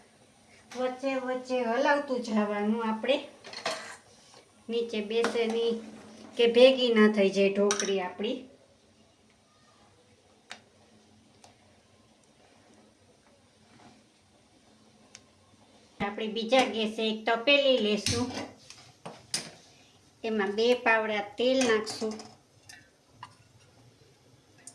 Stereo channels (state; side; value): identical; both; correlation 1.00